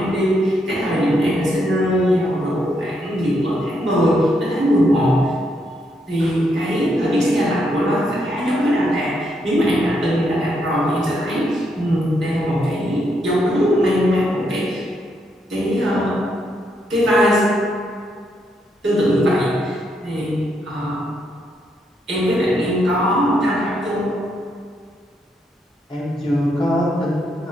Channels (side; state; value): both; normal; correlation 0.78